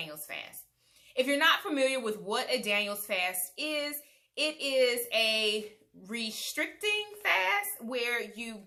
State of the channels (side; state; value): both; identical; correlation 1.00